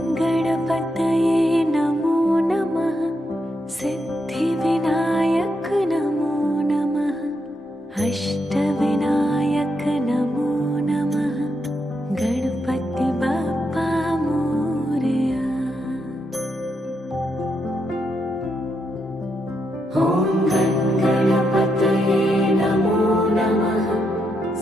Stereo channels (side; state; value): both; normal; correlation 0.81